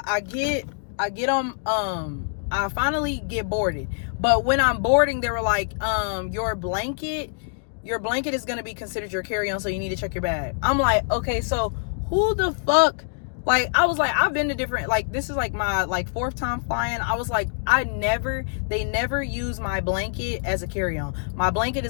get on, I finally get boarded. But when I'm boarding, they were like, your blanket is going to be considered your carry-on, so you need to check your bag. I'm like, okay, so who the fuck, like, I was like, I've been to different, like, this is like my, like, 4th time flying. I was like, they never use my blanket as a carry-on. My blanket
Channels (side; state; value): right; silent; digital silence